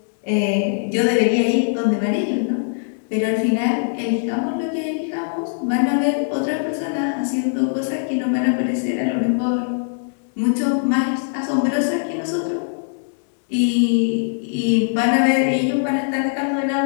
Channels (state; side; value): silent; right; digital silence